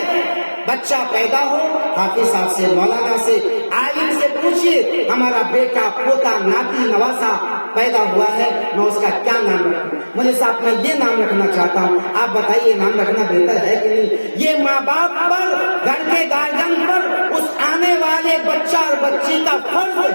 بچہ پیدا ہو، حافظ صاحب سے، مولانا سے، عالم سے پوچھئے ہمارا بیٹا پوتا ناتی نواسا پیدا ہوا ہے، میں اس کا کیا نام رکھوں؟ مولوی صاحب میں یہ نام رکھنا چاہتا ہوں، آپ بتائیے نام رکھنا بہتر ہے کہ نہیں؟ یہ ماں باپ پر، گھر کے گارجن پر، اس آنے والے بچہ اور بچی کا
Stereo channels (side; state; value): both; inverted; correlation -1.00